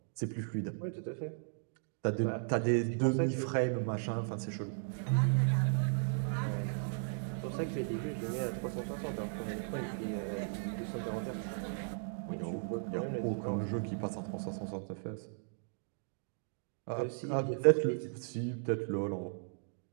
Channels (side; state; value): left; silent; digital silence